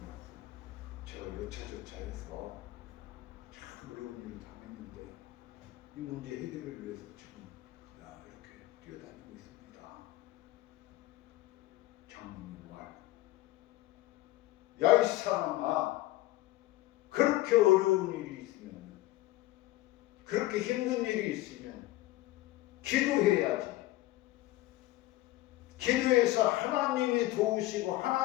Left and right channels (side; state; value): right; quieter; 17.2 dB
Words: 제가 여차저차해서 참 어려운 일을 당했는데 이 문제 해결을 위해서 지금 이렇게 뛰어다니고 있습니다. 장로님 말. 야, 이 사람아, 그렇게 어려운 일이 있으면, 그렇게 힘든 일이 있으면 기도해야지. 기도해서 하나님이 도우시고